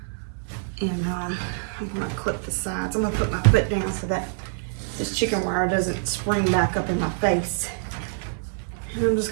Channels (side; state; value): left; silent; digital silence